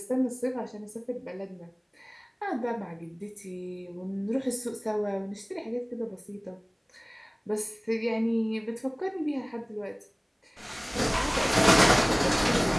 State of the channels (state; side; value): identical; both; correlation 1.00